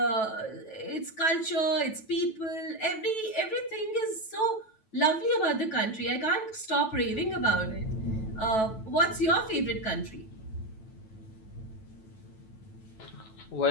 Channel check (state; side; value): late; right; 9.1 ms